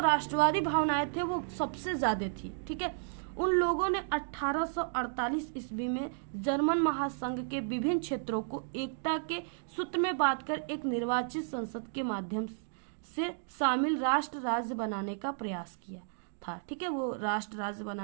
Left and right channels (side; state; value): left; silent; digital silence